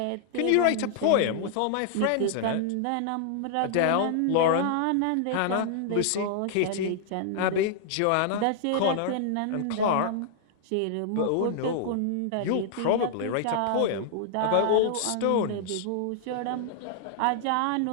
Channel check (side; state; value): both; different; correlation -0.01